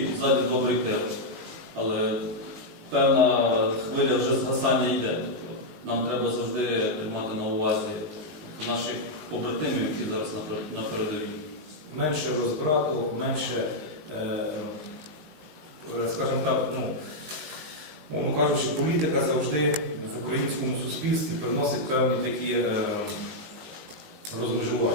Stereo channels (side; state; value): left; late; 19 ms